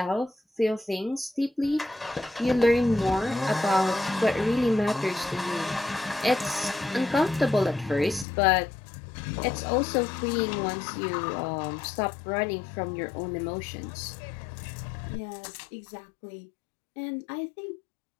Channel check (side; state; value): right; drops out; at 8.2 s